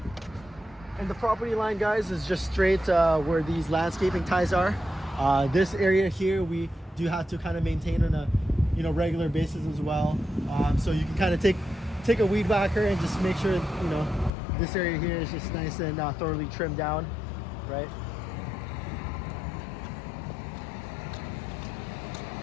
And the property line, guys, is just straight where these landscaping ties are. This area here, we do have to kind of maintain on a, you know, regular basis as well. So you can kind of take a weed whacker and just make sure, you know, this area here is just nice and thoroughly trimmed down, right?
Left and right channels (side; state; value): right; drops out; at 14.3 s